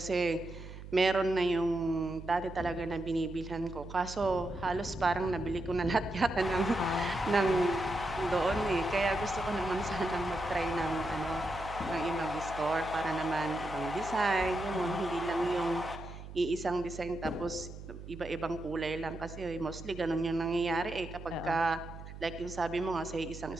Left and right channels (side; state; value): right; noise; hum, 13 dB below the sound